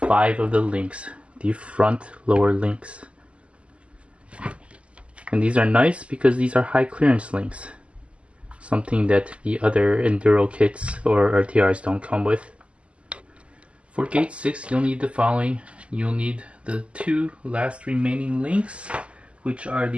of the links, the front lower links. And these are nice because these are high clearance links, something that the other Enduro kits or RTRs don't come with. For gate 6, you'll need the following. You'll need the 2 last remaining links, which are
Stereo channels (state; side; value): late; left; 0.057 ms